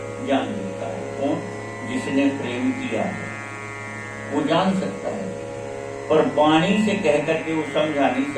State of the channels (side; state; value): both; identical; correlation 1.00